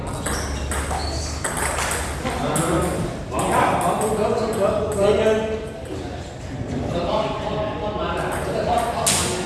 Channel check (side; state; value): both; identical; correlation 1.00